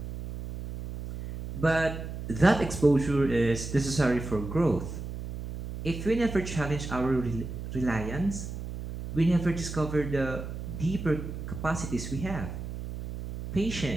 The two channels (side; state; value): right; noise; hum, 8 dB below the sound